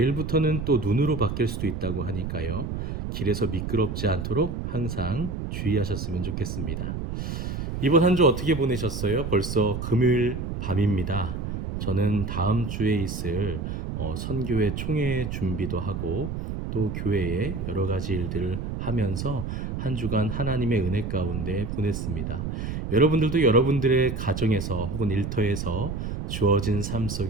또 눈으로 바뀔 수도 있다고 하니까요. 길에서 미끄럽지 않도록 항상 주의하셨으면 좋겠습니다. 이번 한 주 어떻게 보내셨어요? 벌써 금요일 밤입니다. 저는 다음 주에 있을 선교회 총회 준비도 하고 또 교회에 여러 가지 일들을 하면서 한 주간 하나님의 은혜 가운데 보냈습니다. 여러분들도 여러분들의 가정에서 혹은 일터에서 주어진 삶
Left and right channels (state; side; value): noise; right; rumble, 4 dB below the sound